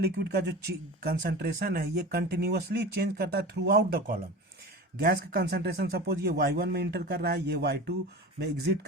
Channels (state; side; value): normal; both; correlation 0.32